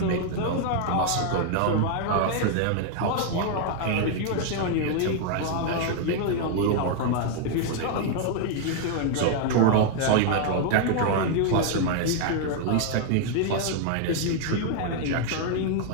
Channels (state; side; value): different; both; correlation 0.00